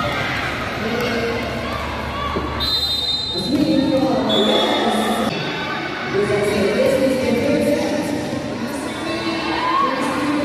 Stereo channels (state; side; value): identical; both; correlation 1.00